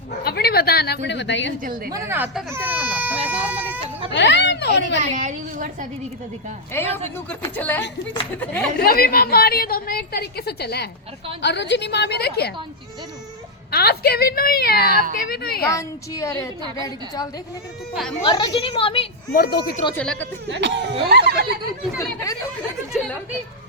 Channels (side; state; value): both; normal; correlation -0.02